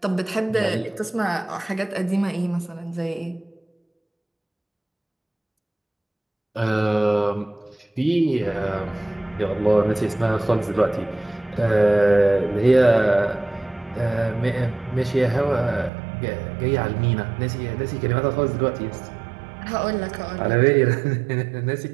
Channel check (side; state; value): left; drops out; at 15.9 s